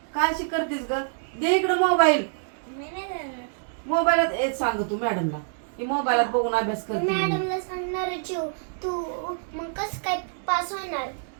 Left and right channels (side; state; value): left; silent; digital silence